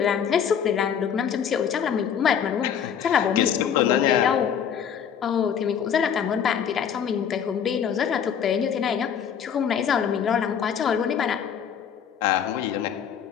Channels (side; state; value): right; quieter; 8.1 dB